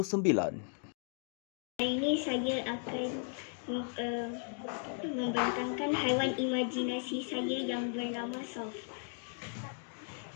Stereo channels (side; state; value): right; silent; 54 dB below the other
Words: Hari ini saya akan membentangkan haiwan imajinasi saya yang bernama Soft.